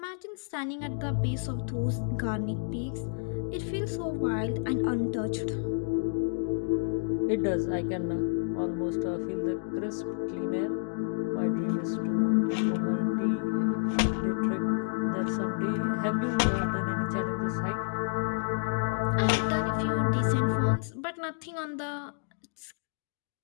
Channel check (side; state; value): right; silent; digital silence